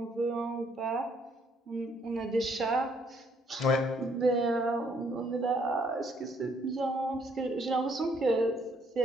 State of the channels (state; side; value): normal; both; correlation 0.68